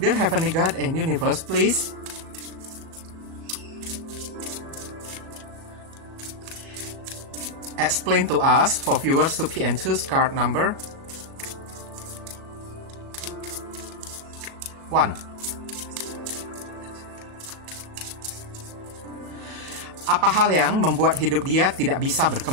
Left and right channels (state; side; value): late; left; 38 ms